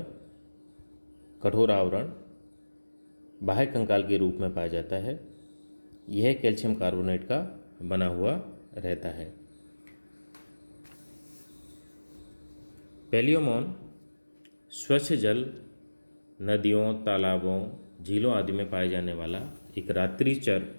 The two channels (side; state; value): both; inverted; correlation -1.00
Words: कठोर आवरण बाह्य कंकाल के रूप में पाया जाता है। यह कैल्शियम कार्बोनेट का बना हुआ रहता है। पैलियोमॉन स्वच्छ जल, नदियों, तालाबों, झीलों आदि में पाए जाने वाला एक रात्रिचर